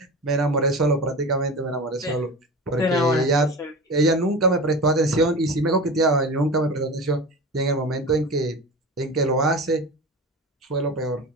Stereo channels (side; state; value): both; normal; correlation 0.31